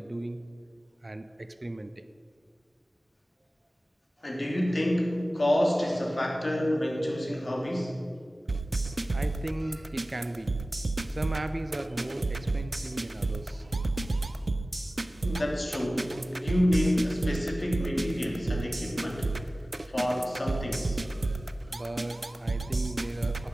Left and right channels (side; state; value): both; normal; correlation 0.97